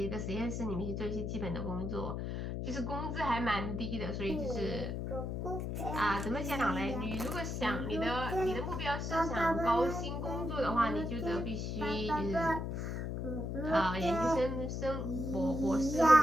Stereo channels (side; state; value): left; noise; hum, 3 dB below the sound